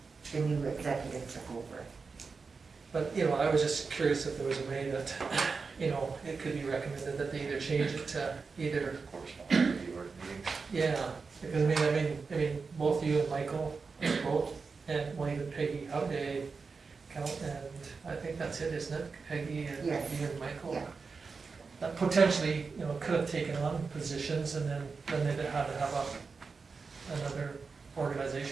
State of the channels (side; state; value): left; quieter; 4.7 dB